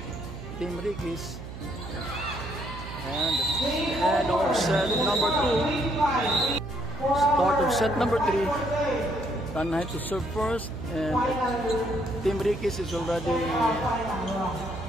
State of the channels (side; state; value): right; noise; hum, 11 dB below the sound